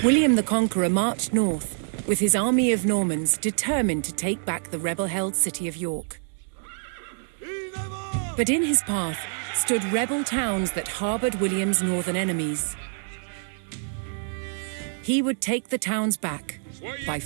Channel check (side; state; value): left; silent; digital silence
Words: William the Conqueror marched north, with his army of Normans determined to take back the rebel-held city of York. But in his path stood rebel towns that harbored William's northern enemies. He would take the towns back by